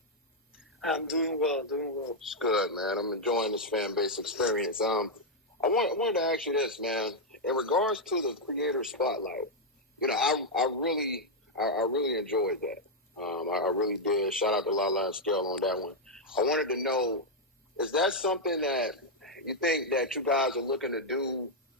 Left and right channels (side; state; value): both; normal; correlation -0.01